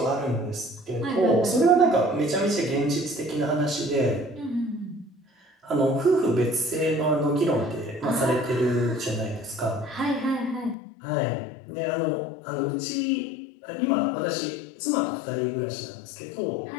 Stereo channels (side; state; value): right; drops out; at 10.8 s